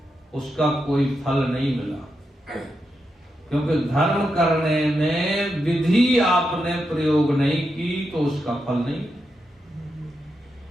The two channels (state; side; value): normal; both; correlation 0.86